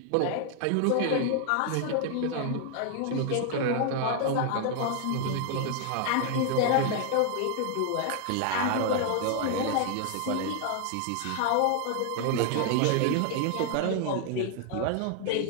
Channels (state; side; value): different; both; correlation 0.00